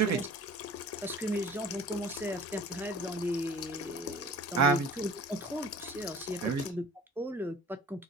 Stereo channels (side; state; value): both; normal; correlation 0.44